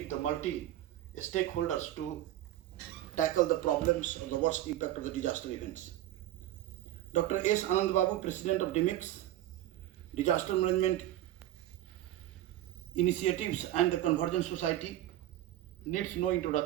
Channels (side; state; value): left; quieter; 13.7 dB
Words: the multi-stakeholders to tackle the problems of the worst impact of the disaster events. Dr. S. Anand Babu, President of DMIX, Disaster Management Initiatives and the Convergence Society, needs no